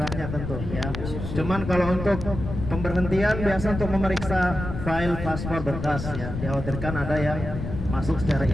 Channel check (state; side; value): noise; left; rumble, 6 dB below the sound